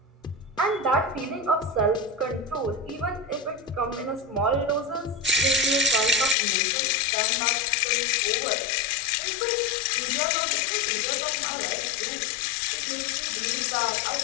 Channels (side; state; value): right; drops out; at 6.4 s